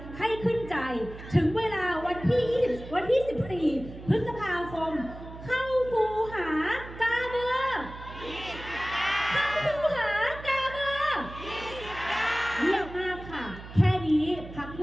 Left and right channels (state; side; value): noise; right; hum, 14 dB below the sound